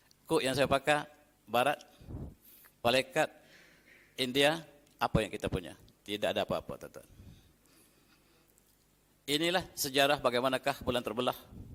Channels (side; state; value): both; identical; correlation 1.00